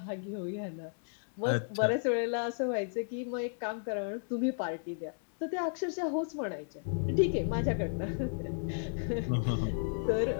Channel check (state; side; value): silent; right; digital silence